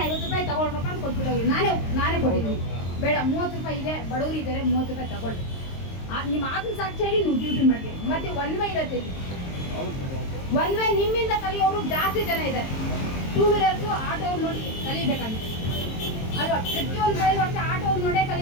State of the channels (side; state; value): right; late; 22 ms